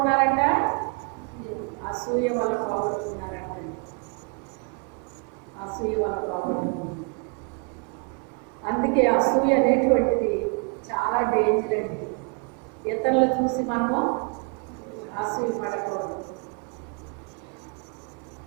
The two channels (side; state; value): left; quieter; 34.2 dB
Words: అసూయ వల్ల పోగొట్టుకున్నారంట. అసూయ వల్ల పోగొట్టుకున్నారు. అందుకే అసూయ అనేటువంటిది చాలా డేంజర్ అండి. ఇతరులు చూసి మనము అసూయ పడకూడదు.